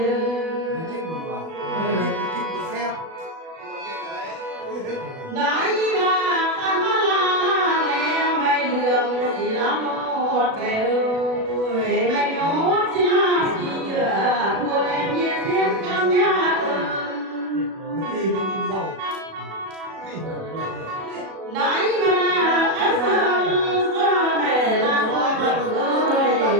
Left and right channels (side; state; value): left; late; 37 ms